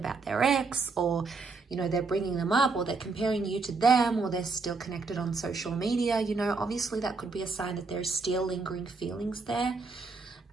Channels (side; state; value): left; quieter; 4.2 dB